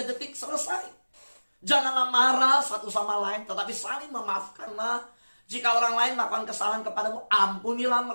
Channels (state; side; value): inverted; both; correlation -1.00